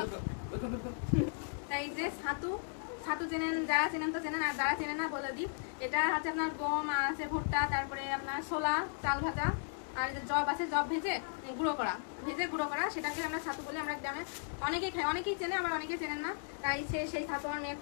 এই যে ছাতু চেনেন, যারা চেনেন তো চেনেন, আর যারা চেনেন না বলে দিই। এটা হচ্ছে আপনার গম আছে, ভুট্টা, তারপরে আপনার ছোলা, চাল ভাজা, আর যে জব আছে, জব ভেজে গুঁড়ো করা, সেটাকে আমরা ছাতু বলি। আমরা গ্রামে অনেকেই খাই, অনেকেই চেনে, আবার অনেকেই চেনেন না। তাই সেই ছাতু আমার মেয়ে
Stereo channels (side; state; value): right; silent; digital silence